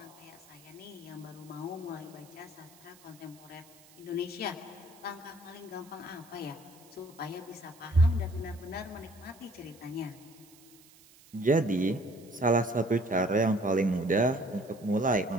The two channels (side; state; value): right; noise; hiss, 25 dB below the sound